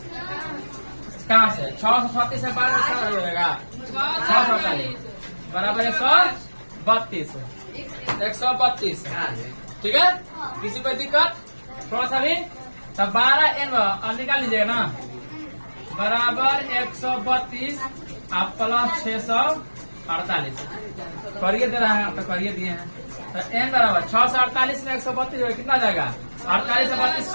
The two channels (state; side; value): inverted; both; correlation -1.00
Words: कहाँ से 636 से 12 हो जाएगा 648 बराबर 132 132 ठीक है। किसी को दिक्कत थोड़ा सा भी तब 12 n अब निकाल लीजिएगा ना बराबर 132 आप प्लस 648 करिए दे रहा है तो करिए दिए हैं तो n बराबर 648 में 132 हो कितना जाएगा 48 से 32